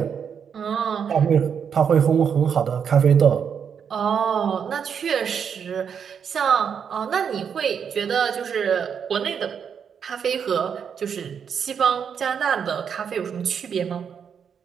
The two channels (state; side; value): quieter; left; 7.3 dB